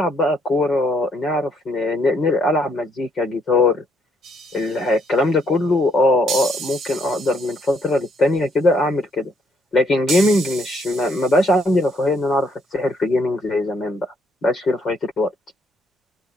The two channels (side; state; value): both; normal; correlation 0.70